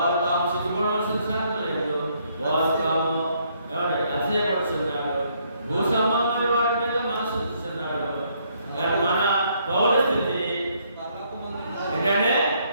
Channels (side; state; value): both; inverted; correlation -0.70